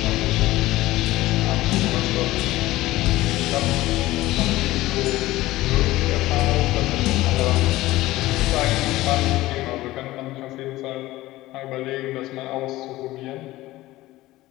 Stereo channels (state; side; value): quieter; right; 17.4 dB